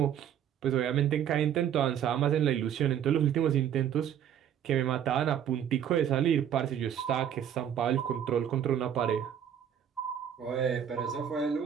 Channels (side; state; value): left; quieter; 9.4 dB